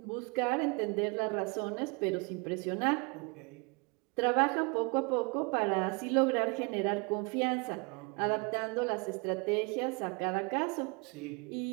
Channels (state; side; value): quieter; left; 31.0 dB